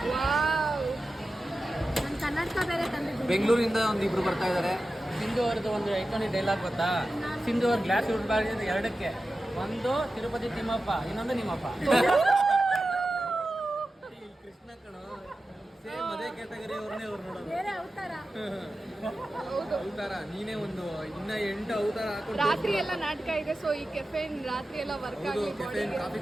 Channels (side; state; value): both; normal; correlation 0.93